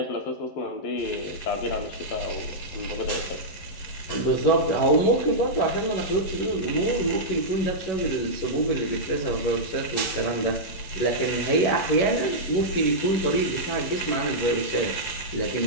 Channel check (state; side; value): late; right; 11 ms